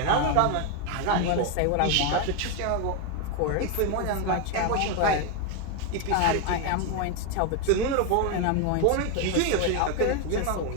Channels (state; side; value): different; both; correlation 0.01